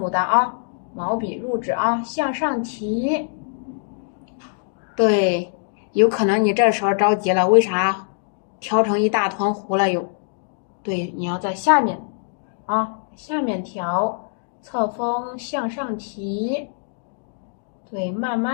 丹啊，毛笔入纸啊，向上提。对，有可能你这时候着急了，为啥调成一大团糊了又？对，你要在下面啊，下面调。侧锋向上提，对，慢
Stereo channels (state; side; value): silent; right; digital silence